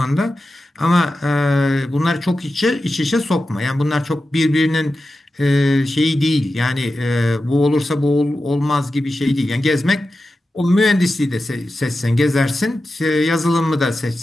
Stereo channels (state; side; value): normal; both; correlation 0.92